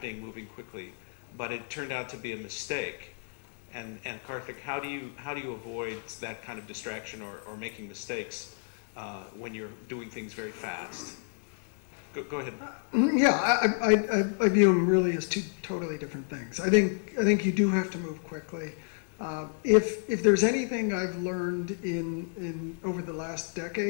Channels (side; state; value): right; silent; 57 dB below the other